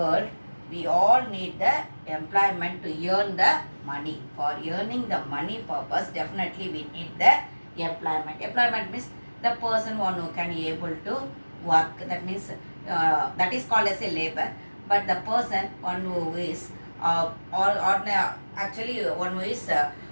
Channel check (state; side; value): inverted; both; correlation -1.00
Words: we all need the employment to earn the money. For earning the money purpose, definitely we need the employment. Employment means the person one who can able to work. That means that is called as a labor. But the person one who is actually one who is